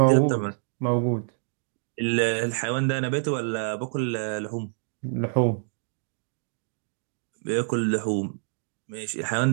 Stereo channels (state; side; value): silent; left; digital silence